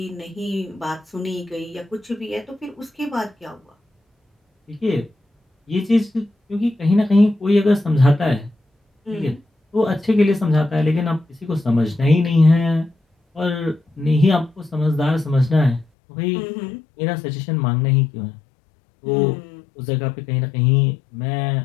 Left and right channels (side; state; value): right; drops out; at 15.9 s